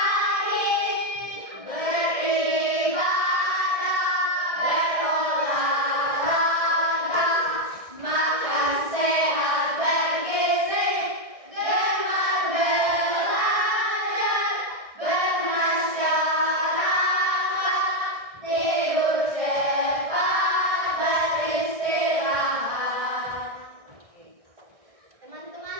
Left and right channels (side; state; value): left; late; 1.6 ms